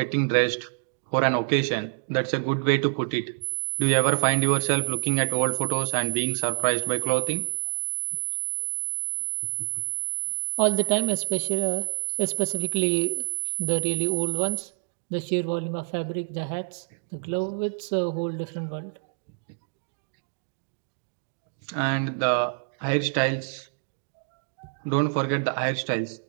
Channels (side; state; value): left; silent; digital silence